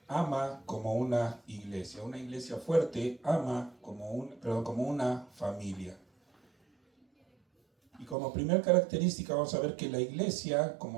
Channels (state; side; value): drops out; left; at 8.2 s